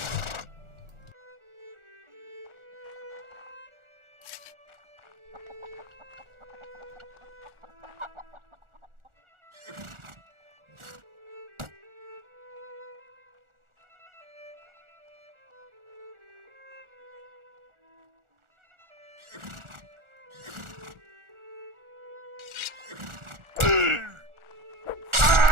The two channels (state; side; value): late; left; 1.4 ms